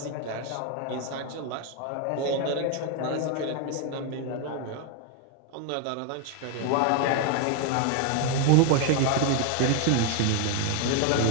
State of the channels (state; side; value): different; both; correlation 0.01